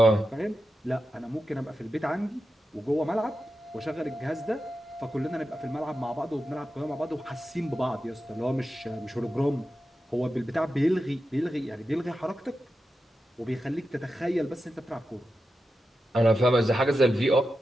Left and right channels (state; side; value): normal; both; correlation 0.90